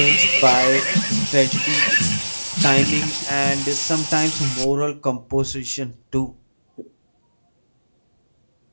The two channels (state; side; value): inverted; both; correlation -1.00